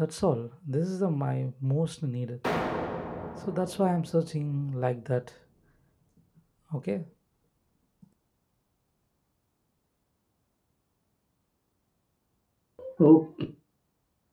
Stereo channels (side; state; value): both; identical; correlation 1.00